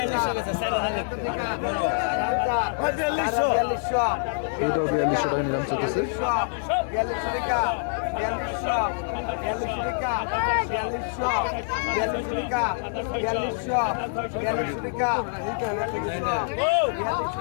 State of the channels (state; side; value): silent; right; 56 dB below the other